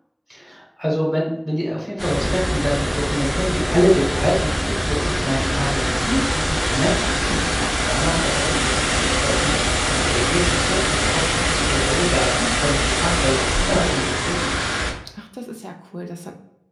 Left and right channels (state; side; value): identical; both; correlation 1.00